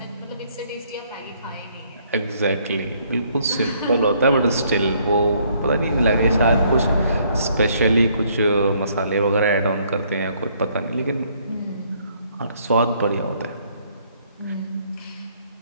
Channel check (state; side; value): inverted; both; correlation -0.66